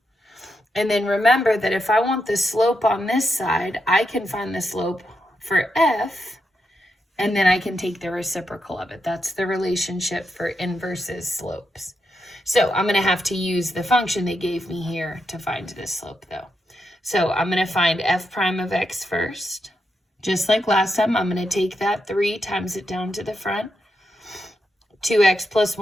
And then remember that if I want the slope on this side, I can find the slope for f, and then I can take the reciprocal of it. That's the relationship for inverses slopes. So I'm going to have to use the function they gave me here to find this slope, though. So I'm going to find f prime of x first. Just like last time, I'm going to take that 3 times it down to the front. 2x plus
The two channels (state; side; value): normal; both; correlation 0.84